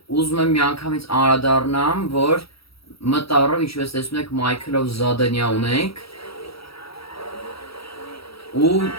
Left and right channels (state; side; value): late; right; 0.76 ms